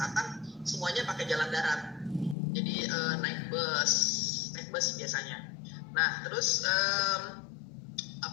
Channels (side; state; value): right; drops out; at 2.4 s